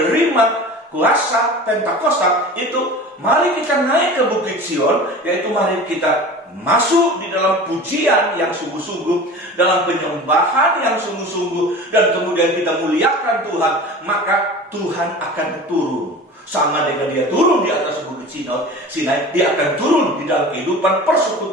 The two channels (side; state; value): both; normal; correlation 0.37